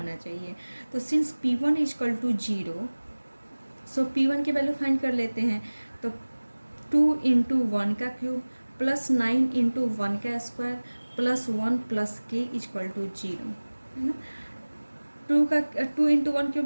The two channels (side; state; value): both; inverted; correlation -1.00